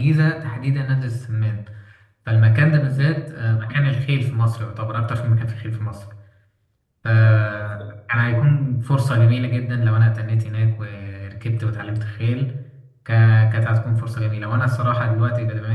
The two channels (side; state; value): both; identical; correlation 1.00